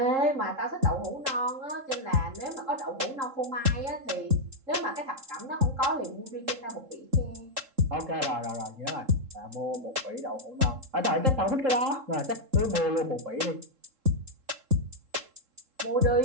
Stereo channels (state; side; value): late; left; 3.7 ms